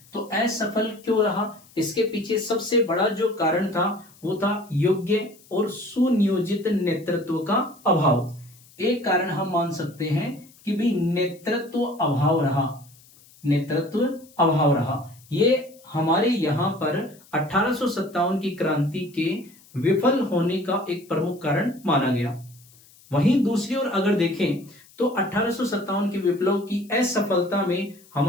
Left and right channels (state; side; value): noise; left; hiss, 26 dB below the sound